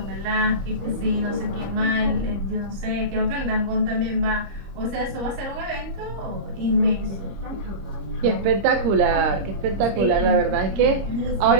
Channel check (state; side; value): late; left; 25 ms